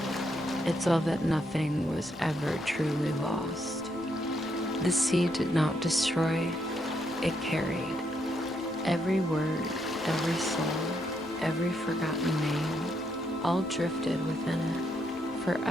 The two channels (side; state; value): both; normal; correlation 0.77